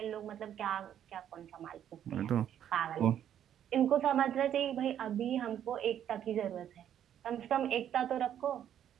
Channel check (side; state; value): left; quieter; 10.1 dB